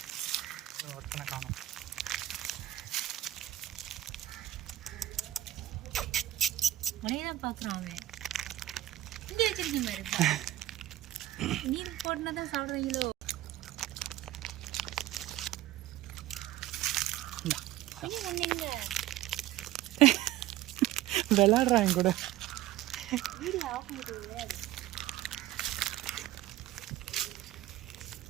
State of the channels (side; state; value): left; quieter; 14.5 dB